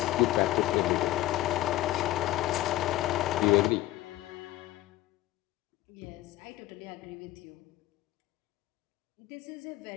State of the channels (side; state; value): right; quieter; 15.5 dB